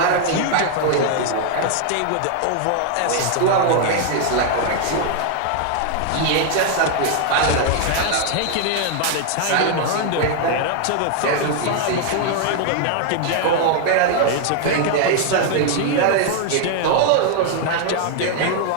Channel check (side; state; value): both; different; correlation 0.00